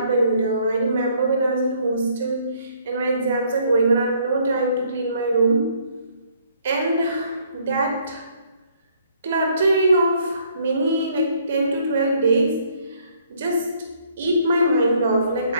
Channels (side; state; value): both; inverted; correlation -0.65